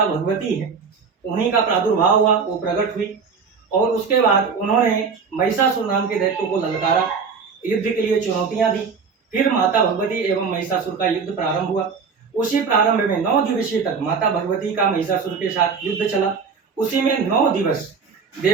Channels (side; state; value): left; quieter; 5.5 dB